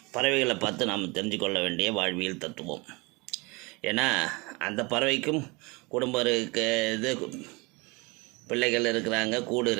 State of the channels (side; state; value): left; quieter; 26.5 dB